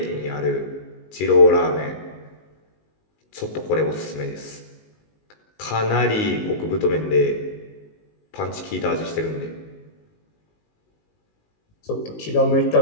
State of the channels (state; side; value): late; right; 19 ms